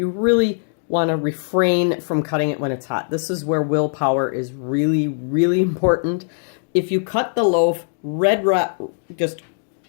really want to refrain from cutting it when it's hot. This is where willpower is really, really important. If you cut the loaf just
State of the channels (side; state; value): right; silent; digital silence